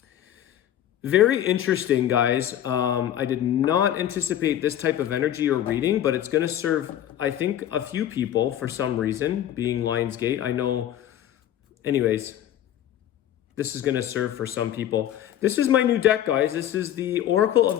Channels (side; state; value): right; quieter; 11.4 dB